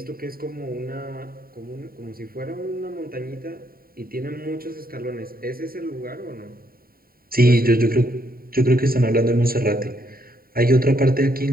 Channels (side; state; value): left; late; 0.43 ms